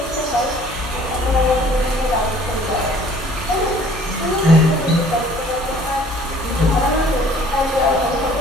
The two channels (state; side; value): normal; both; correlation 0.54